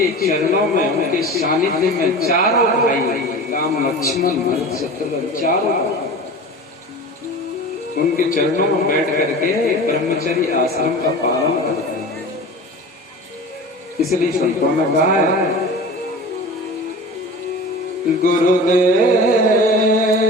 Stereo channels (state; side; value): normal; both; correlation 0.35